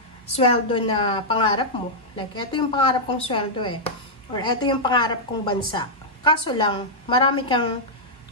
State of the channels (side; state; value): both; normal; correlation -0.07